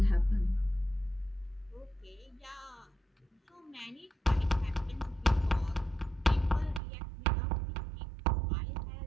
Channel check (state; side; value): drops out; left; at 6.8 s